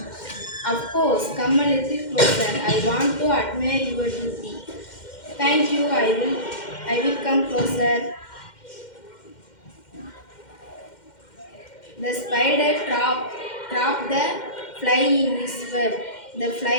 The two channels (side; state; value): right; late; 2.1 ms